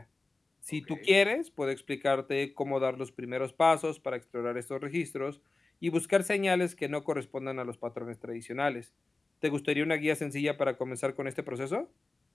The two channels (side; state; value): right; quieter; 3.4 dB